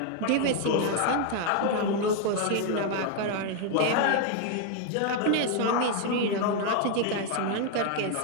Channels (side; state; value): both; different; correlation 0.00